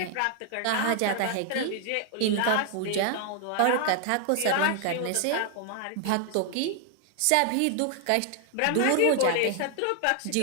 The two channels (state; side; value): different; both; correlation 0.00